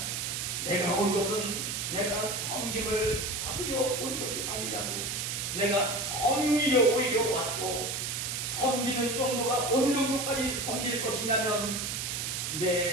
내가 온 것은 내가 섬김을 받으려 온 것이 아니라고. 내가 섬기려 오히려 왔고, 섬기는 정도가 어느 정도까지 섬길 것이냐면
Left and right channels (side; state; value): right; noise; hiss, 2 dB below the sound